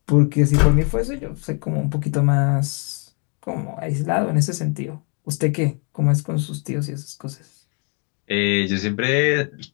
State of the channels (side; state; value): right; quieter; 37.3 dB